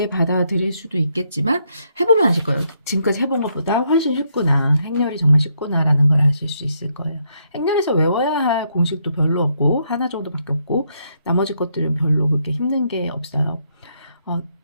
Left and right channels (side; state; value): both; inverted; correlation -0.75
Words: 받아들일 수도 있겠지만 해보면 아실 거예요. 지금까지 해본 것보다 훨씬 쉽구나. 행렬이 정말 쉽구나라는 걸 아실 수 있을 거예요. 행렬에서 외워야 할 공식도 별로 없고 하나 정도밖에 없고 나머지 것들은 별로 그렇게 힘든 게 없어요.